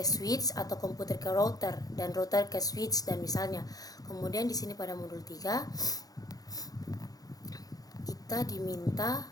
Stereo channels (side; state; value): right; late; 0.18 ms